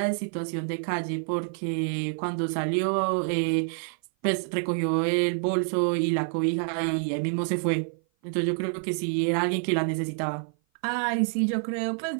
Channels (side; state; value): left; silent; 56 dB below the other